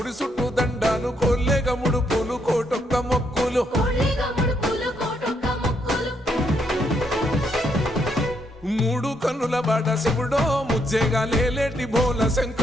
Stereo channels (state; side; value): normal; both; correlation 0.75